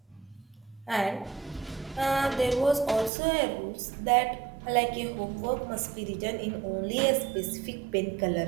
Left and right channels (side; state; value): left; drops out; at 3.1 s